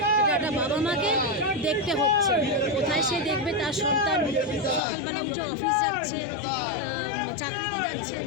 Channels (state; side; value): drops out; right; at 4.8 s